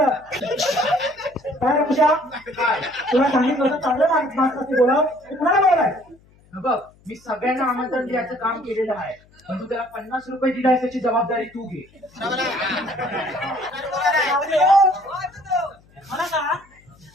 काय रे पूजा, तुला सांगितलं होतं चांगलं माणूस असते बोलाव, कुणाला बोलाय. बघ, मी सगळ्यांना आमंत्रण द्यायचं काम केलेलं आहे, पण तू त्याला 50 रुपये दिलाय त्याची जबाबदारी तू घे. मला सांग,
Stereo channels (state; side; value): noise; left; hum, 29 dB below the sound